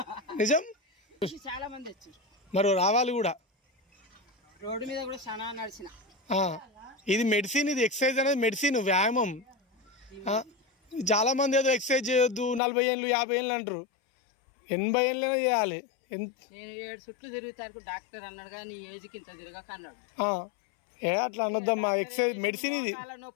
నిజం, చాలా మంది వచ్చారు. మరి రావాలి కూడా. రోడ్డు మీద కూడా చాలా నడిచిన. ఇది మెడిసిన్, ఇది ఎక్సర్సైజ్ అనేది మెడిసిన్, వ్యాయామం. చాలా మంది ఏదో ఎక్సర్సైజ్ చేయొద్దు 40 ఏళ్ళు 50 ఏళ్ళు అంటారు. 80 ఏళ్ళైనా చేయాలి. నేను 7 చుట్లు తిరుగుతాను డాక్టర్ అన్నాడు కానీ ఏజ్కి ఇంత తిరగక అన్నాడు. అట్లా అనొద్దమ్మా, ఎక్సర్సైజ్ మెడిసిన్ ఇది.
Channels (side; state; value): right; drops out; at 12.6 s